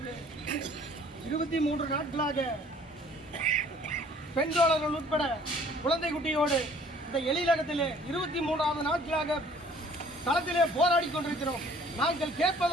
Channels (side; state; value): both; normal; correlation 0.55